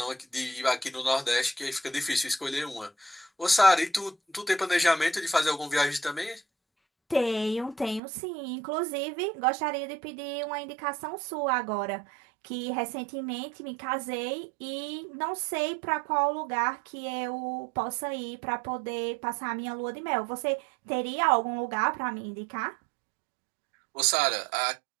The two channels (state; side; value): drops out; left; at 8.0 s